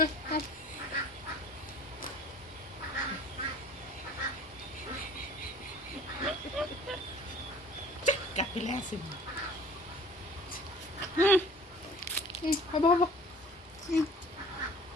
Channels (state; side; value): normal; both; correlation 0.48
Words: কাটিলে আছে হ'ব হ'ব